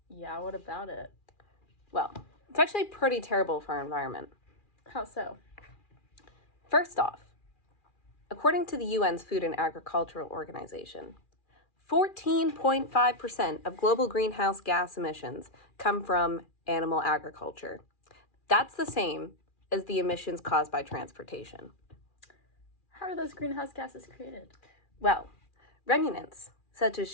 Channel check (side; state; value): right; late; 2.4 ms